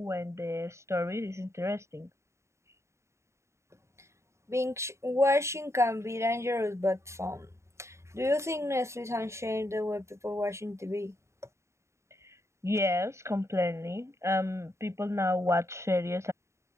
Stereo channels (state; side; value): late; left; 0.14 ms